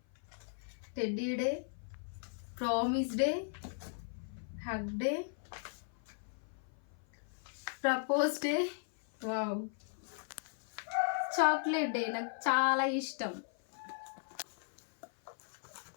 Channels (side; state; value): right; silent; 53 dB below the other